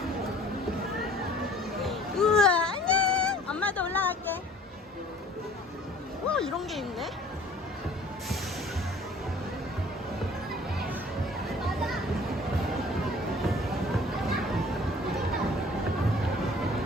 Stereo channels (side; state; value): both; normal; correlation 0.51